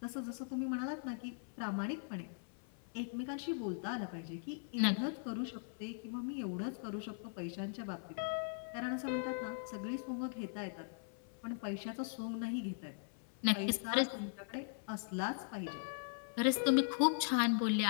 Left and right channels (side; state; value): right; silent; 51 dB below the other